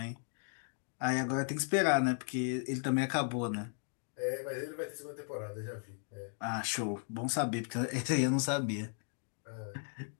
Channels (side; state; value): right; silent; 54 dB below the other